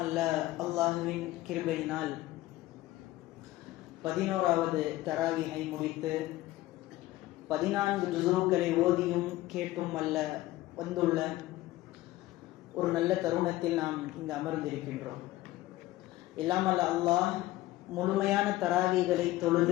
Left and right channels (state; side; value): quieter; right; 16.8 dB